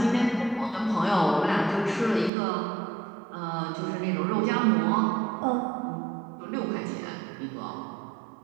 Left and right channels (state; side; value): drops out; left; at 2.3 s